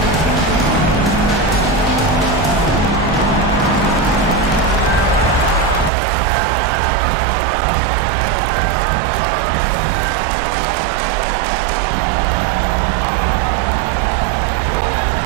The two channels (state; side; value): drops out; left; at 5.9 s